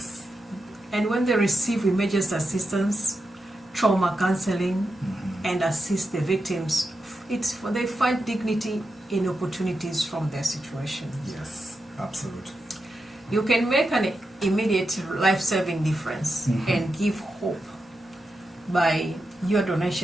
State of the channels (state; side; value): normal; both; correlation 0.88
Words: And when they receive immediate assistance, trauma counseling, and assist the victims, they find dignity in opportunities from their situation. Absolutely. You can make an immediate life-saving difference and give hope by your